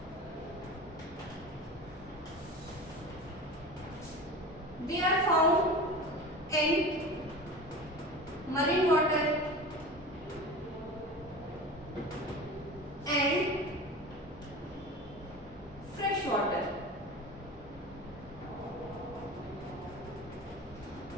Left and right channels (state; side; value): normal; both; correlation 0.33